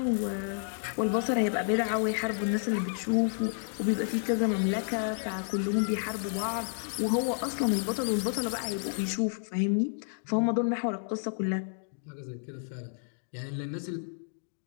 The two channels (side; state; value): right; silent; digital silence